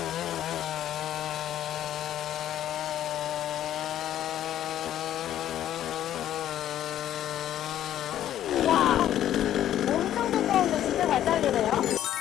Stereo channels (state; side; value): quieter; right; 11.7 dB